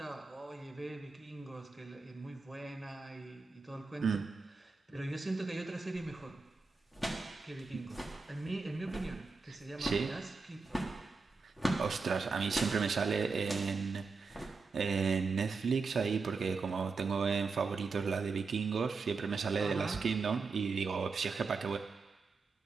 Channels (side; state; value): left; quieter; 4.4 dB